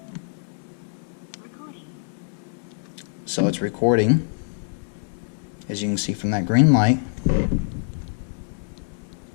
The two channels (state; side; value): silent; right; digital silence